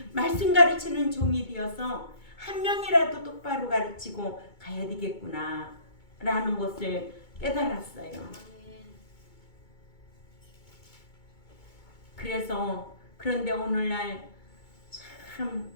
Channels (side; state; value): right; late; 2.2 ms